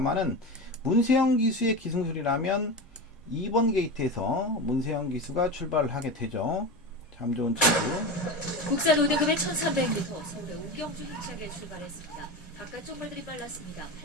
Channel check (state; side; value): normal; both; correlation 0.24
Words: 문세영 기수의 기승술이라면 2번 게이트에서 문세영 기수가 출발을 하게 되죠. 참 좋은 친구. 국산 5등급의 1300m 서울의 우경주 힘차게 출발했습니다. 바깥쪽 말들이 빨랐습니다.